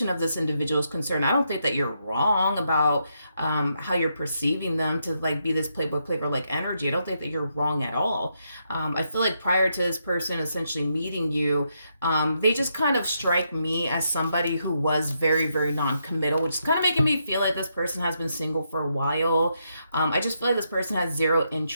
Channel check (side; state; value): both; inverted; correlation -0.80